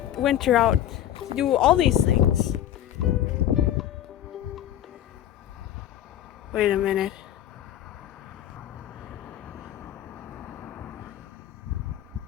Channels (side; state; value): right; quieter; 11.6 dB